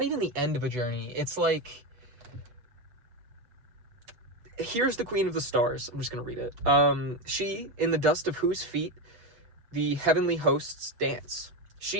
even the end of a journey. It's like, here's the Queen of the Stars. I'm just going to read it. She, in the dust of whose feet the heavenly hosts dance.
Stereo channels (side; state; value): left; late; 8.1 ms